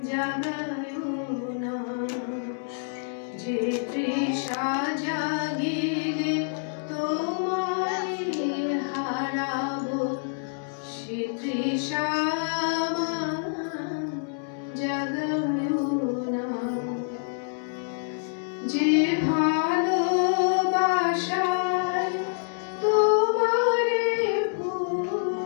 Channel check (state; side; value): silent; right; digital silence